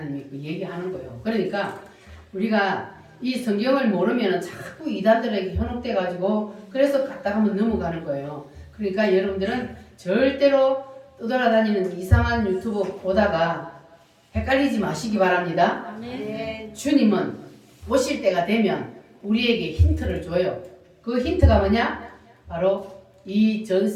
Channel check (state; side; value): identical; both; correlation 1.00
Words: 그 얘기하는 거예요. 그러니까 우리가 이 성경을 모르면 자꾸 이단들에게 현혹돼가지고 그래서 갔다 가면 넘어가는 거예요. 그러니까 여러분들은 절대로 떠돌아다니는 이상한 유튜브 보다가 헷갈리지 마시기 바랍니다. 주님은 오실 때가 되면 우리에게 힌트를 줘요. 그 힌트가 뭐냐? 바로 이 전